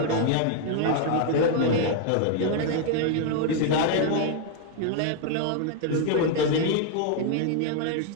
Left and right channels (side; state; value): both; different; correlation 0.00